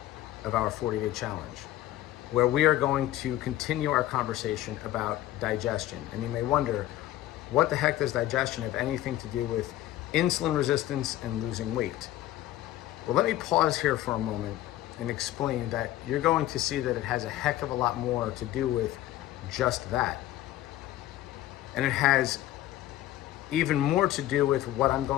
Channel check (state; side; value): quieter; right; 14.4 dB